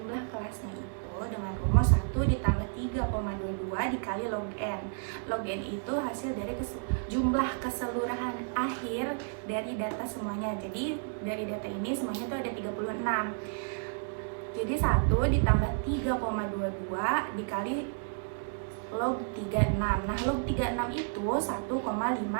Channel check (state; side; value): silent; left; digital silence